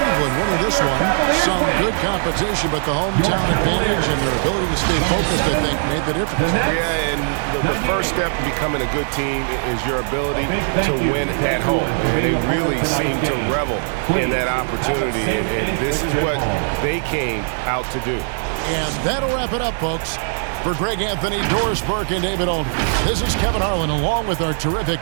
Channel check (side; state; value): left; silent; digital silence